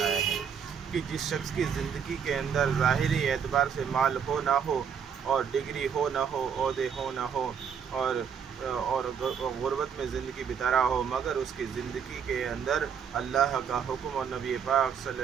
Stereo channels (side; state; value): left; quieter; 7.3 dB